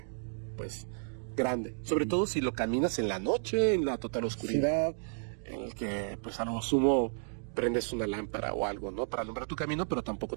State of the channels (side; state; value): left; silent; digital silence